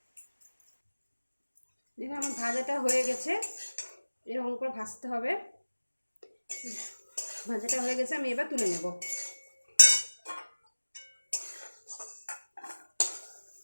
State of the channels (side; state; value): both; inverted; correlation -1.00